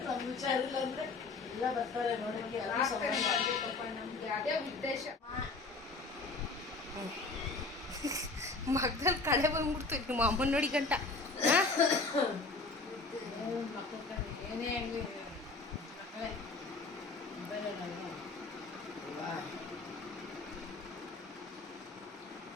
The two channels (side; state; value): right; quieter; 3.7 dB